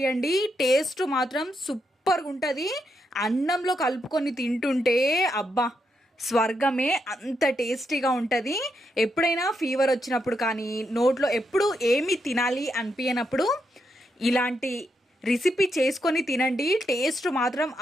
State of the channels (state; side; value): normal; both; correlation 0.81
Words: టేస్ట్ మాత్రం సూపర్గా ఉంటుంది. అన్నంలో కలుపుకొని తింటుంటే అబ్బా స్వర్గమే, అంత టేస్టీగా ఉంటుంది. ఎప్పుడైనా ఫీవర్ వచ్చినప్పుడు కానీ నోట్లో ఎప్పుడు ఏమి తినాలి అనిపించినప్పుడు ఇలాంటి రెసిపీ చేసుకొని తినండి. టేస్ట్ మాత్రం